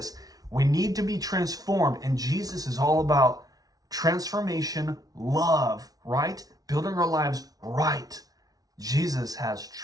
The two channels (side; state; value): left; late; 0.18 ms